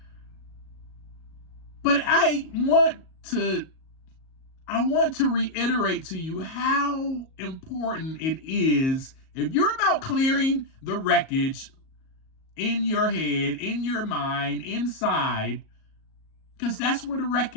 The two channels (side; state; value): right; late; 38 ms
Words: But I want to reiterate to you how important it is if you're about clearing the wreckage in your head, in your mind, inside, because that's where the